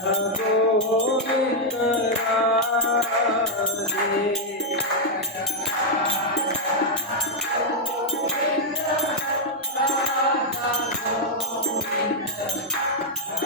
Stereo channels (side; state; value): both; normal; correlation -0.03